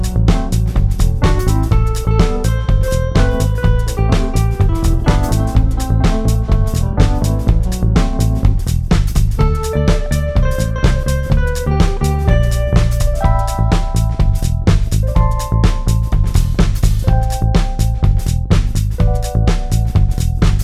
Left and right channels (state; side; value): identical; both; correlation 1.00